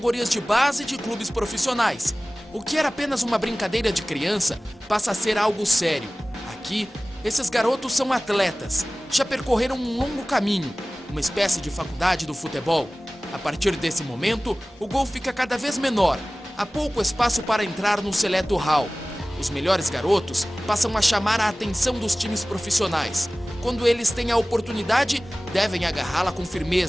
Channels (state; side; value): normal; both; correlation 0.98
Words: de base de clubes profissionais. O que era apenas uma brincadeira de criança passa a ser algo sério. Aqui, esses garotos são atletas. Já percorreram um longo caminho, uma espécie de faculdade do futebol. A partir desse momento, o gol fica cada vez menor. Há pouco espaço para entrar no seleto hall. Os melhores garotos passam a chamar a atenção dos times profissionais. Quando eles têm a oportunidade, devem agarrá-la com